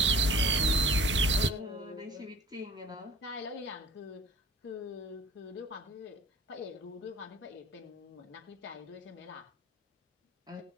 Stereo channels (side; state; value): both; normal; correlation 0.45